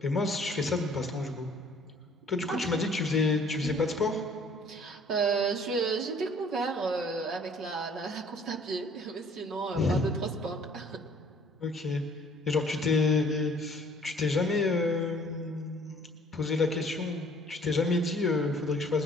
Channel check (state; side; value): normal; both; correlation 0.56